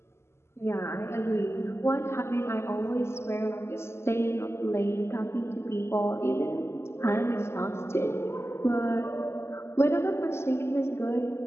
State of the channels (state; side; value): late; right; 0.12 ms